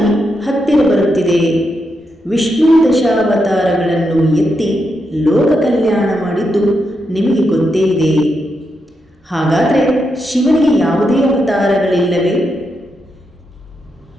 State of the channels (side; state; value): both; normal; correlation 0.84